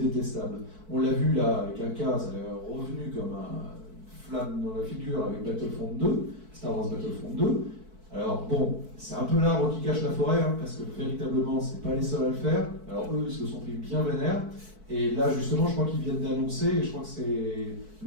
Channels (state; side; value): late; left; 4.6 ms